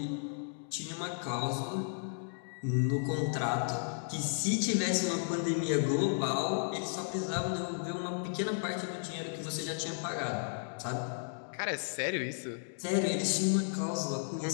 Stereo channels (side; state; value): right; silent; digital silence